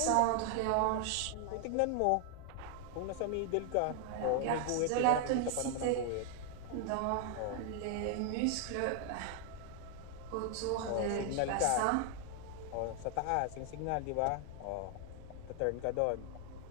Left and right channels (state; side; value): different; both; correlation 0.00